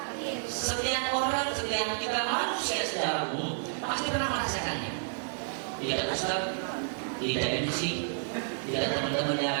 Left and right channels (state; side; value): silent; left; 57 dB below the other